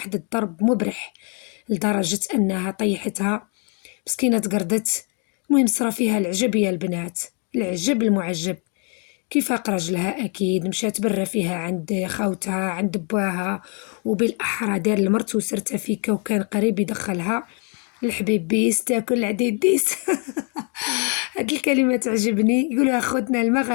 الضرب مبرح لدرجة أنها طيحتها مسكينة، تقردت. المهم صرا فيها العجب يا البنات، العجب المعجب. كيفاق رجلها أكيد مشات برا فيها عند خوتها عند بواها، وبالأحرى دار المرت وسرتها فيك وكان قريب يدخلها الحبيب بيس تاكل العديد ديس. هاد الكلمة تعجبني، يقولها أخوتنا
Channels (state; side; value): quieter; right; 37.4 dB